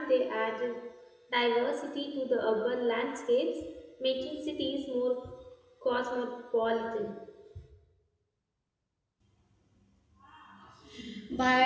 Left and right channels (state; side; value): identical; both; correlation 1.00